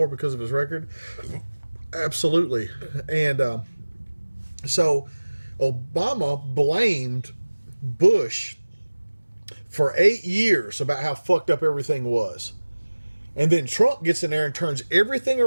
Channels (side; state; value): both; inverted; correlation -1.00